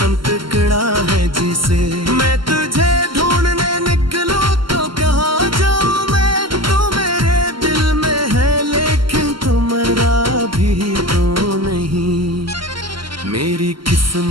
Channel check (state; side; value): late; left; 0.73 ms